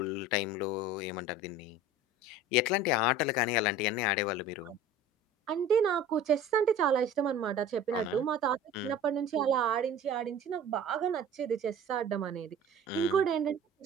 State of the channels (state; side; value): normal; both; correlation 0.41